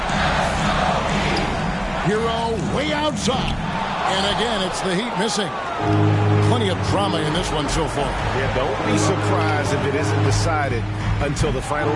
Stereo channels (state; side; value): identical; both; correlation 1.00